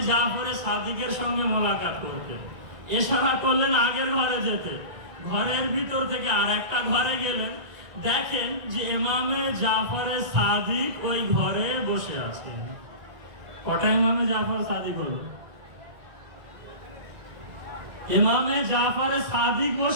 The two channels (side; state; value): left; late; 1.9 ms